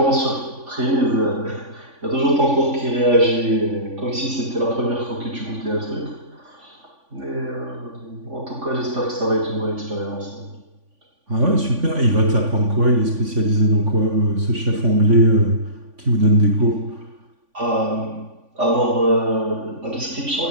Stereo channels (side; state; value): left; late; 3.5 ms